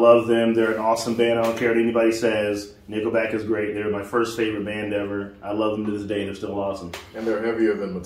them. They're an awesome band. I don't care what anybody says. Nickelback is great. They're my first favorite band ever. I love them to this day. They're still awesome. And they're heavier than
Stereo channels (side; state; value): both; identical; correlation 1.00